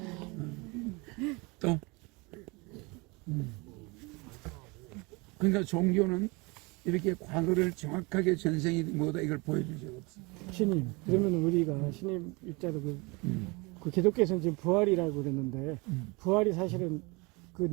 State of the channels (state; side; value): quieter; left; 26.9 dB